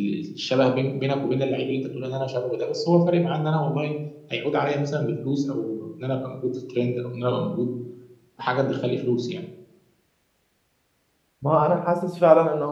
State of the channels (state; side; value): identical; both; correlation 1.00